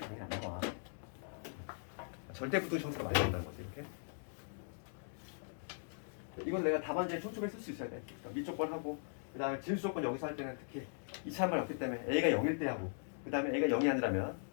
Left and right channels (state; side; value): silent; right; digital silence